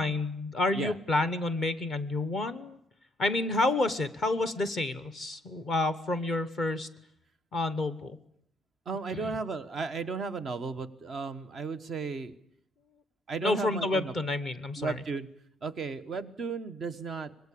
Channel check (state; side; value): normal; both; correlation 0.67